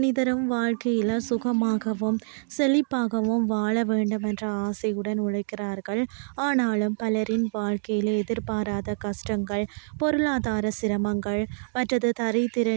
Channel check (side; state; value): left; silent; digital silence